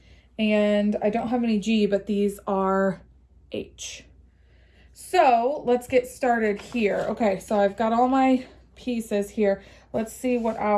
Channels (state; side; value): identical; both; correlation 1.00